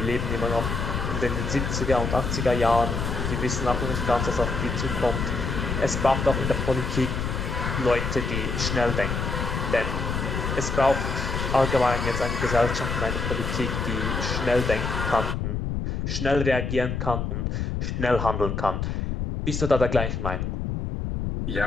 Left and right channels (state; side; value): noise; left; rumble, 2 dB below the sound